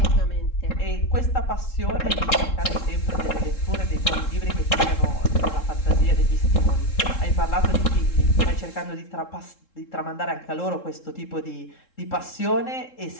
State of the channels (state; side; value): late; right; 3.7 ms